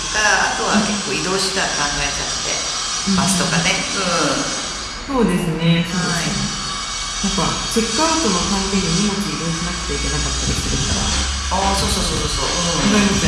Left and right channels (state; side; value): identical; both; correlation 1.00